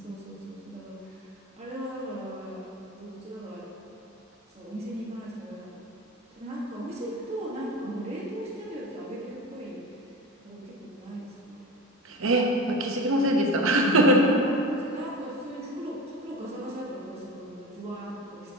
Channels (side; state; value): both; normal; correlation 0.31